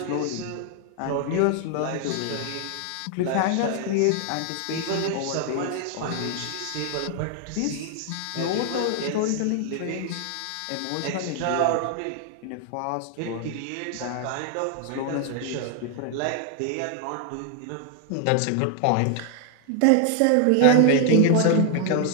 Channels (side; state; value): both; different; correlation 0.00